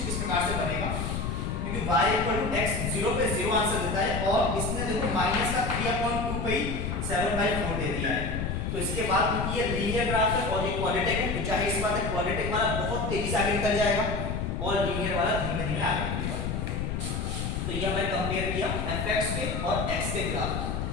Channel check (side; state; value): left; noise; rumble, 2 dB below the sound